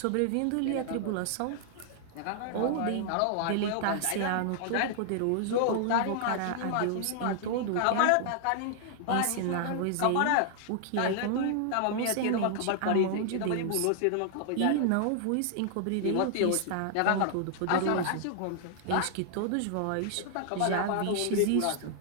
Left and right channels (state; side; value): different; both; correlation -0.01